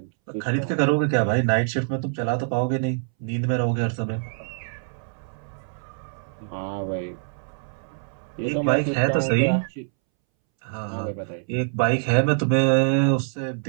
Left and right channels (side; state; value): left; silent; 62 dB below the other